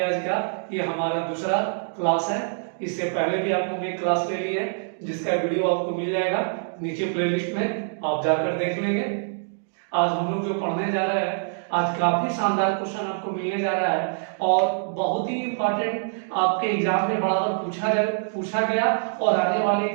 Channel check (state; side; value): silent; left; digital silence